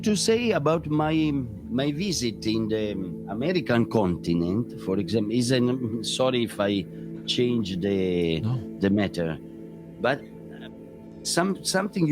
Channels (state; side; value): identical; both; correlation 1.00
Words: to say about my visit in the American continent, for example, sorry if I change the matter, but something